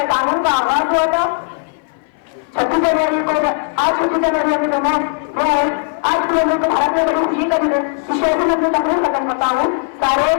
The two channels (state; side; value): silent; right; 58 dB below the other